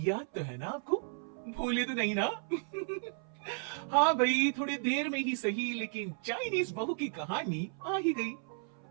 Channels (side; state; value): left; silent; 55 dB below the other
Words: तो है ना आपको? भूले तो नहीं ना? हाँ भाई, थोड़ी देर में ही सही, लेकिन चाइनीज बहू की कहानी आ ही गई।